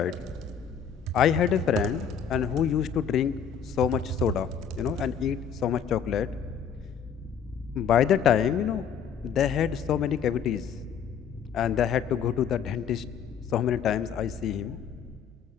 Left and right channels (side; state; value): right; quieter; 7.6 dB